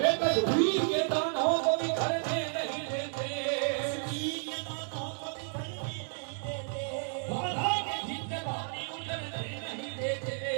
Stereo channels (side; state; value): left; silent; digital silence